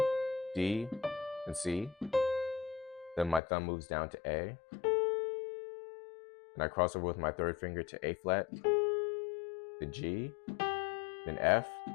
D, and C. Then my thumb moves down to A, and I cross over with my third finger to A flat, then G, then F.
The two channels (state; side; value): drops out; right; at 3.4 s